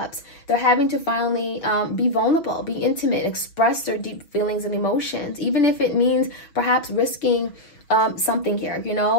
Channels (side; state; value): right; late; 6.3 ms